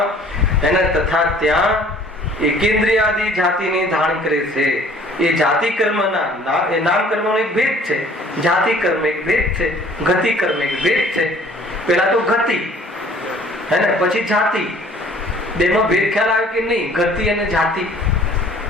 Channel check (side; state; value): both; normal; correlation 0.53